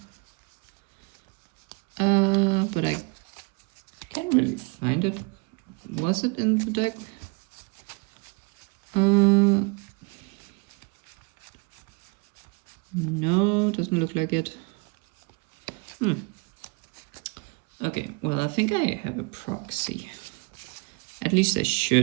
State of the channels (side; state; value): left; quieter; 30.2 dB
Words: But I can't really find it. Was it in the deck? No, doesn't look like it. Okay, well, I think I have a proxy. At least I